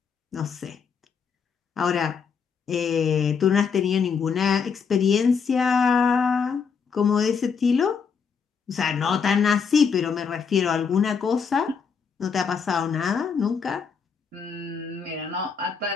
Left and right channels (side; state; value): right; quieter; 6.1 dB